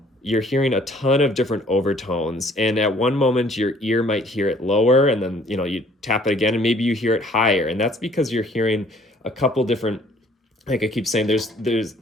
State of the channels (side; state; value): both; normal; correlation 0.58